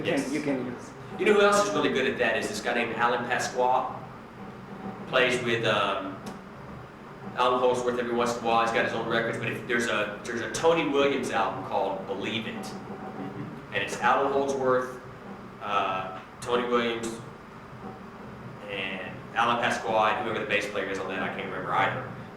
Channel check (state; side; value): identical; both; correlation 1.00